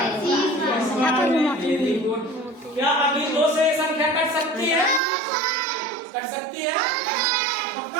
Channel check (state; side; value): drops out; left; at 5.0 s